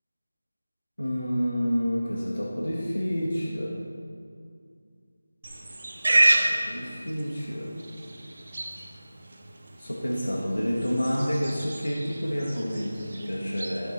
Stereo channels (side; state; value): both; inverted; correlation -0.97